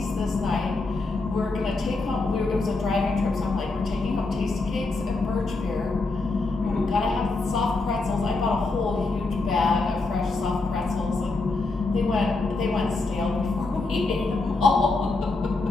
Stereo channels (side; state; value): right; quieter; 3.5 dB